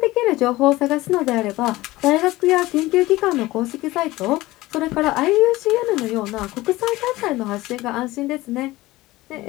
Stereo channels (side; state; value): right; quieter; 18.6 dB